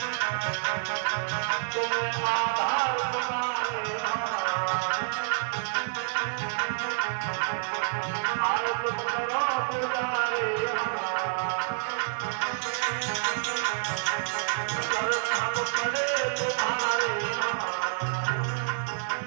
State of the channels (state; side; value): silent; left; digital silence